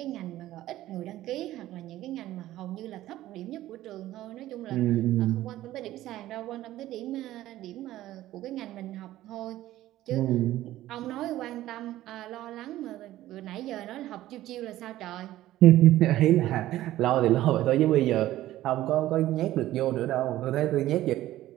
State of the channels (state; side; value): quieter; left; 14.7 dB